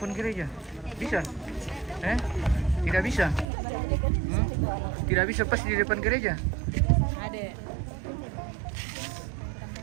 gereja. Bisa? Tidak bisa? Tidak bisa pas di depan gereja? Ada.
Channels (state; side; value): drops out; left; at 3.5 s